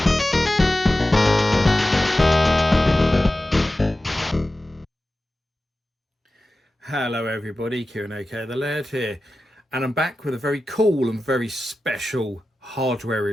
Hello everybody, Kieran OK the Laird here, and I'm back with a very cool and very special hardware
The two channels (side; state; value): both; normal; correlation 0.94